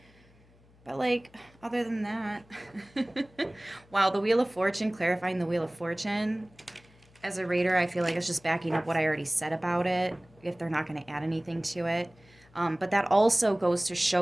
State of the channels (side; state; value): left; noise; hum, 28 dB below the sound